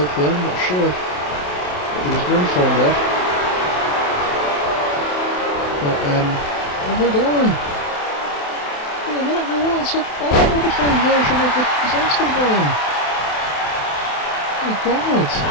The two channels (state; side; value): late; right; 28 ms